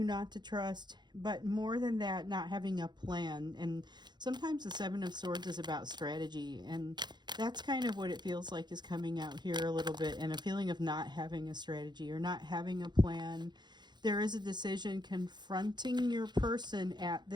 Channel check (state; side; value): late; left; 0.21 ms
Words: not to trust, but more than that, not having a plan. And sometimes the Seven of Swords is about strategy, and that's kind of what it feels like is coming out here a little bit, and a feeling of not having a strategy or not having a plan. There is a decision confronting your person at